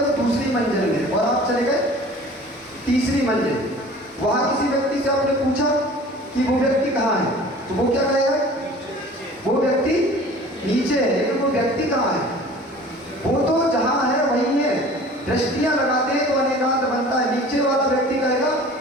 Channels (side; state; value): both; normal; correlation 0.45